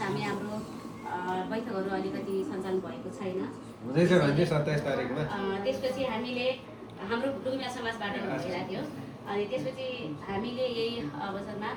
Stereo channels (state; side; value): identical; both; correlation 1.00